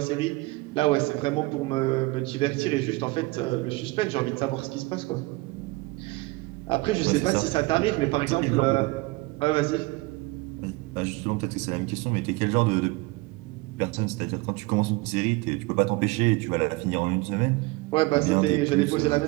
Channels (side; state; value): left; quieter; 23.0 dB